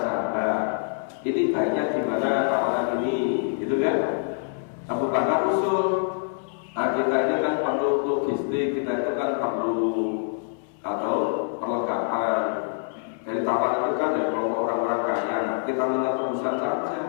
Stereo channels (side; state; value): right; silent; 61 dB below the other